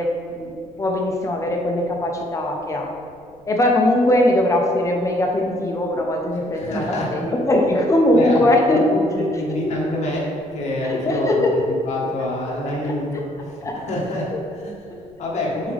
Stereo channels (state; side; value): noise; left; rumble, 29 dB below the sound